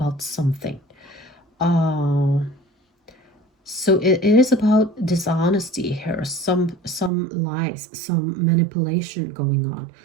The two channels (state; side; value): drops out; left; at 7.1 s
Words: something. Uh, so it is about dishonesty here, some lies, some manipulation going on,